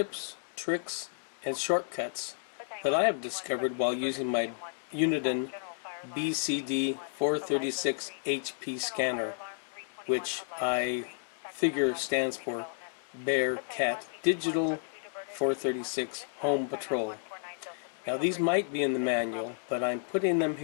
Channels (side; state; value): right; silent; digital silence